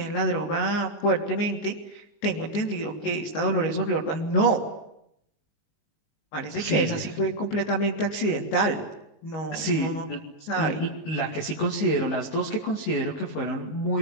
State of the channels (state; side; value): late; right; 19 ms